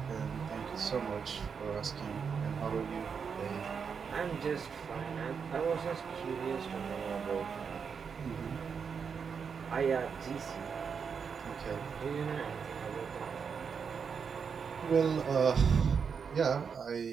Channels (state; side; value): quieter; left; 6.3 dB